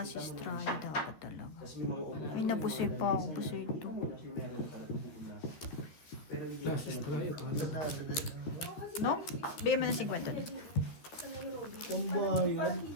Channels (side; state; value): right; late; 13 ms